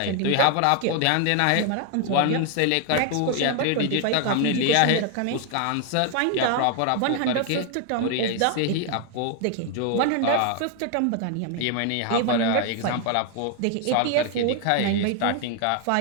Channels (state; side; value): different; both; correlation 0.00